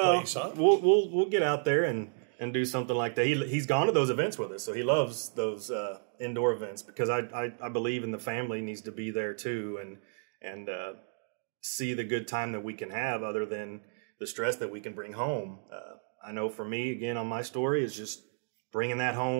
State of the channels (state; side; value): silent; left; digital silence